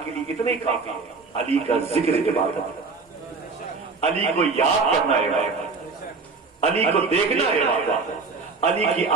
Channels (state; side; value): quieter; left; 4.3 dB